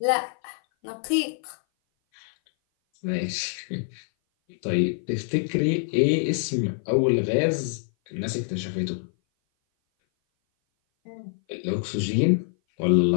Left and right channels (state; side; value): silent; right; 57 dB below the other